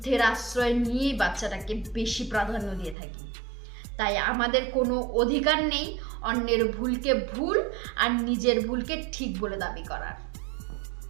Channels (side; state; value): left; drops out; at 3.0 s